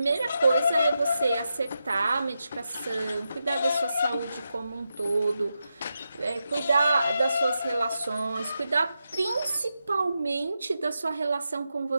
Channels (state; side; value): inverted; both; correlation -0.88